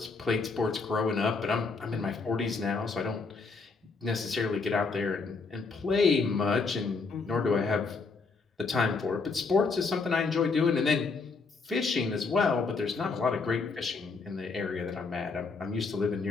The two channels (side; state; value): right; quieter; 4.4 dB